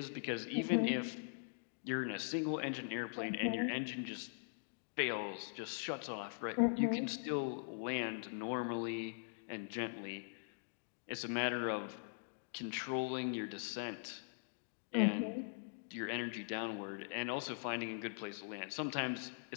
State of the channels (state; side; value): silent; right; digital silence